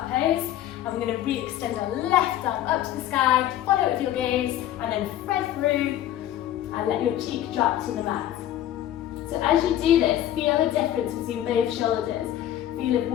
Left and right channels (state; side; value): quieter; right; 12.2 dB